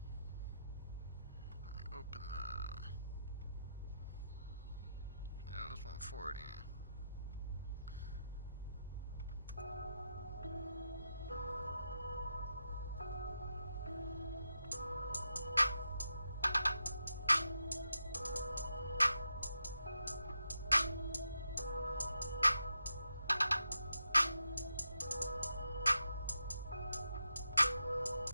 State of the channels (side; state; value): both; inverted; correlation -0.85